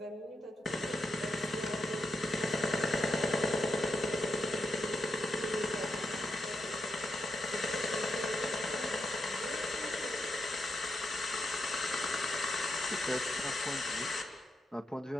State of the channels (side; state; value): both; normal; correlation 0.82